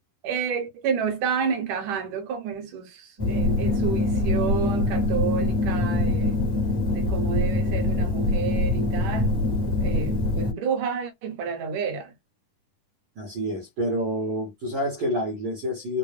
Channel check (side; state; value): left; late; 10 ms